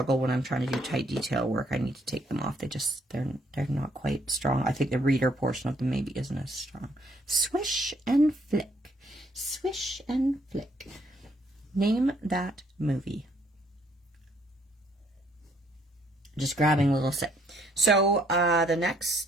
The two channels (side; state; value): both; normal; correlation 0.68